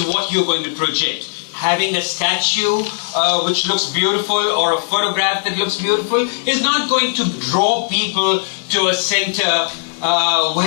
what you're going to project. Having a statue which looks beautiful or a photograph that looks beautiful is not going to draw people to a center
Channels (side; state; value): right; silent; digital silence